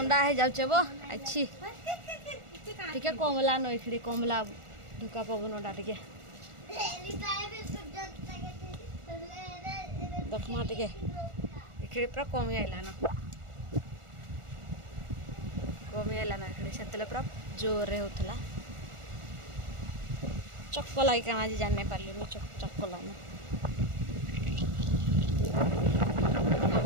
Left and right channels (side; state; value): left; late; 1.4 ms